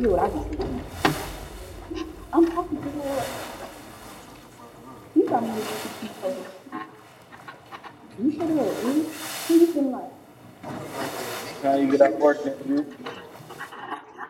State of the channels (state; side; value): identical; both; correlation 1.00